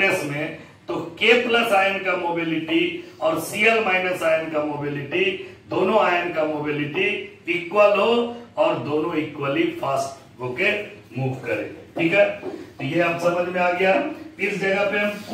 में, तो K प्लस आयन का मोबिलिटी और Cl माइनस आयन का मोबिलिटी, दोनों आयन का मोबिलिटी इक्वल हो और दोनों इक्वली फास्ट होके मूव करे। ठीक है, तो ये आप समझ में आ गया। इस जगह पे हम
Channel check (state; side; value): identical; both; correlation 1.00